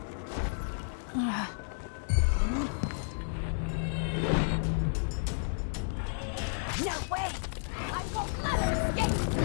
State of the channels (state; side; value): silent; right; digital silence